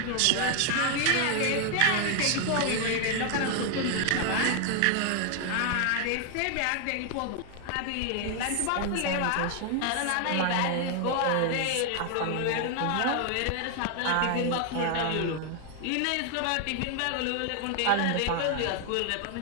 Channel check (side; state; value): both; different; correlation 0.00